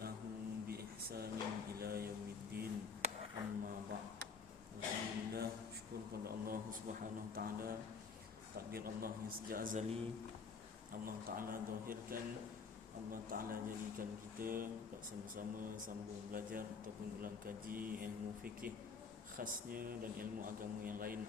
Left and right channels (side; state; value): right; quieter; 5.2 dB